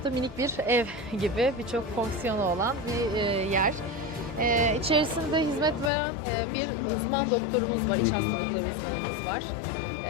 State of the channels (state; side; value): drops out; right; at 5.9 s